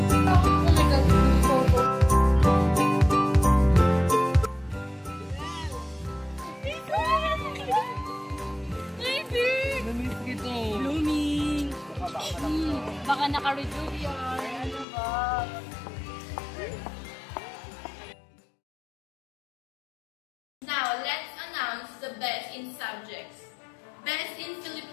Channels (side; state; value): right; drops out; at 14.9 s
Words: Baka naka-review yan. Ano ba? Now, let's announce the best in subjects. Best in